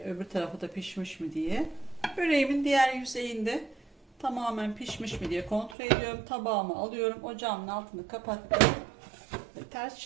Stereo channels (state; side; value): drops out; left; at 5.8 s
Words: tarafı da pişmiş mi diye. Böreğimin diğer yüzeyinde tamamen pişmiş mi diye kontrol ediyorum. Tabağımı alıyorum. Ocağımın altını kapattım. Ve ters